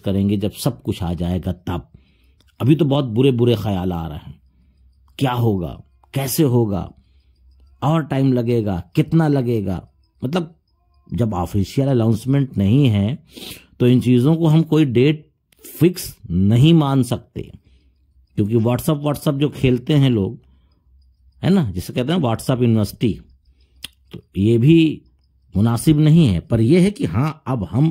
जब सब कुछ आ जाएगा तब। अभी तो बहुत बुरे बुरे ख्याल आ रहे हैं, क्या होगा, कैसे होगा, और टाइम लगेगा, कितना लगेगा। मतलब जब ऑफिशियल अनाउंसमेंट नहीं है तो इन चीज़ों को हम कोई डेट फिक्स नहीं मान सकते, क्योंकि व्हाट्सअप जो खेलते हैं लोग, है ना, जिसे कहते हैं व्हाट्सअप यूनिवर्सिटी, तो ये भी मुनासिब नहीं है। पर यह है कि हाँ, अब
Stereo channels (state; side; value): identical; both; correlation 1.00